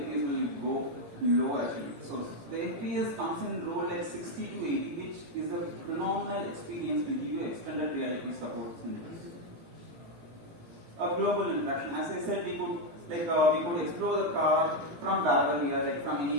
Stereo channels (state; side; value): late; left; 18 ms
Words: FPS will go low actually. So the FPS comes in role like 60 to 80, which is a phenomenal experience to give you extended reality support in this. A global interaction. As I said, we could explore the car from wherever we are, like from